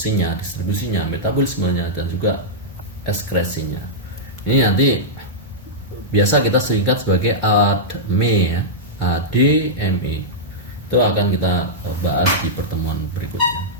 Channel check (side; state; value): both; normal; correlation -0.10